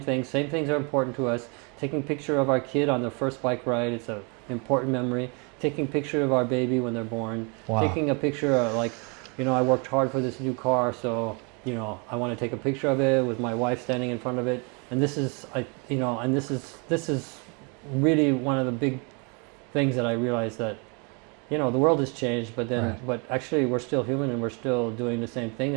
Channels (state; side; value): quieter; left; 33.5 dB